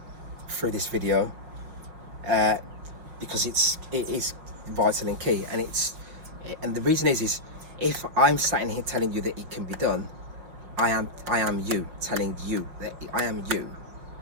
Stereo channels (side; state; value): left; late; 5.5 ms